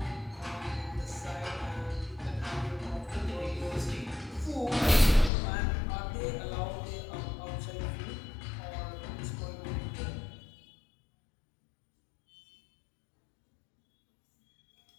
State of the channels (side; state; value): right; drops out; at 5.3 s